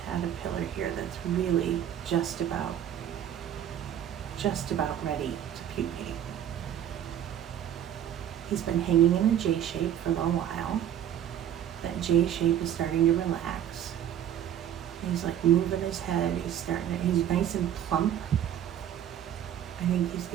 caterpillar here that's really just about ready to pupate. He's been hanging in a J shape for a little while. That J shape is starting to relax. He's like moving his head. He's nice and plump. I think he's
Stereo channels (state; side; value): quieter; left; 10.4 dB